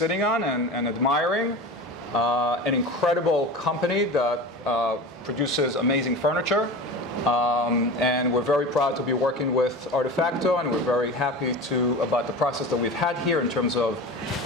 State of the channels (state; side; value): normal; both; correlation 0.31